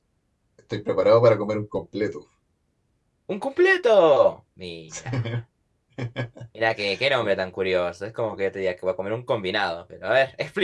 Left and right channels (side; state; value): both; identical; correlation 1.00